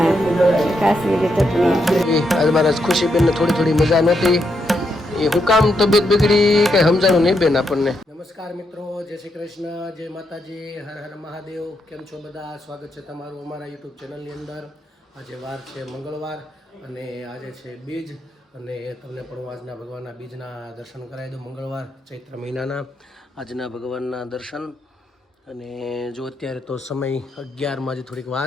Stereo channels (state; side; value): normal; both; correlation 0.81